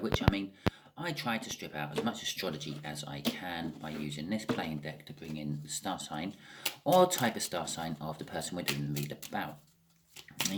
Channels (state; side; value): identical; both; correlation 1.00